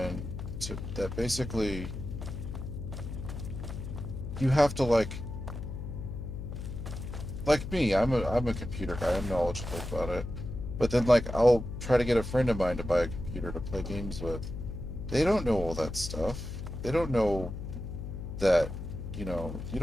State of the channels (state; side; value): noise; left; hum, 7 dB below the sound